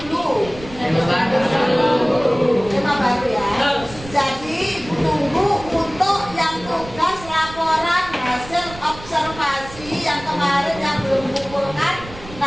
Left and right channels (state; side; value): noise; right; rumble, 16 dB below the sound